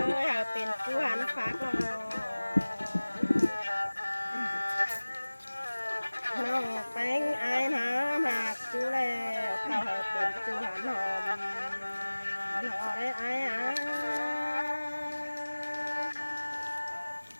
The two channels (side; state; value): both; inverted; correlation -1.00